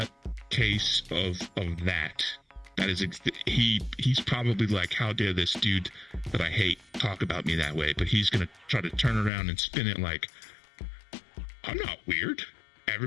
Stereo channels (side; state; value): right; drops out; at 9.3 s